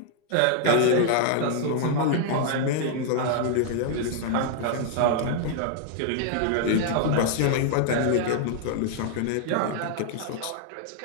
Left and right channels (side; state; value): both; different; correlation 0.00